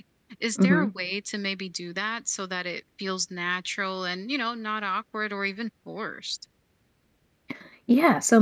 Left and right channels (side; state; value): both; identical; correlation 1.00